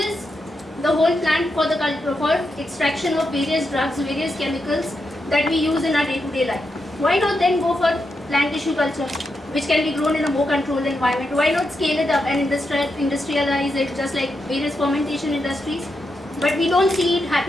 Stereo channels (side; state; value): both; normal; correlation 0.85